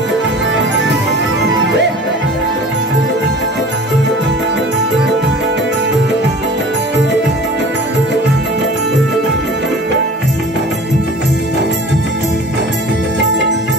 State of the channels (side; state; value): both; normal; correlation 0.42